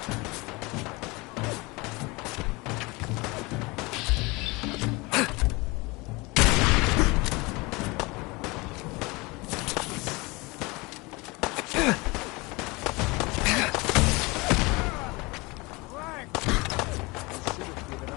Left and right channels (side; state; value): right; quieter; 24.8 dB